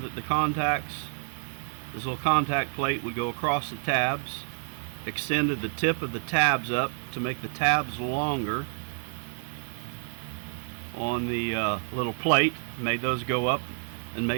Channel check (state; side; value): silent; left; 59 dB below the other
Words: the contacts, this little contact plate would go across the tabs, extended the tip of the tabs up to make the tabs longer on the little plate, made those go up and